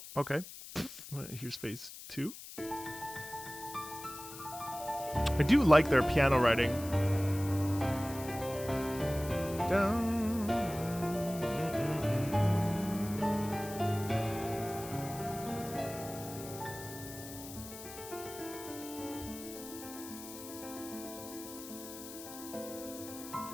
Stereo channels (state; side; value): noise; left; hiss, 13 dB below the sound